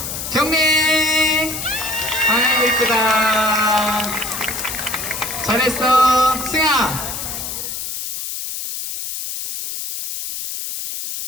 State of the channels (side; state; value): left; noise; hiss, 6 dB below the sound